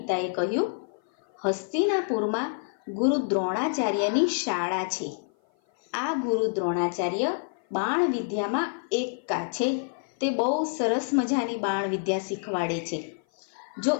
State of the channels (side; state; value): right; silent; 56 dB below the other